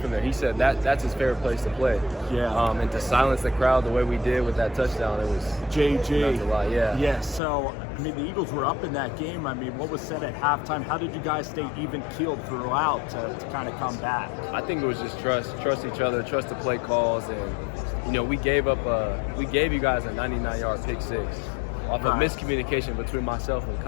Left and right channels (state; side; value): drops out; right; at 7.4 s